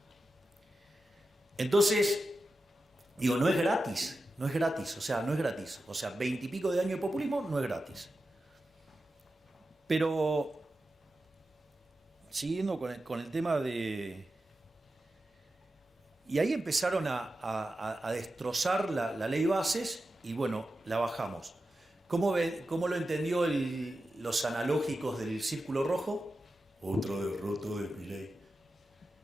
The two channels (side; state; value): both; normal; correlation 0.91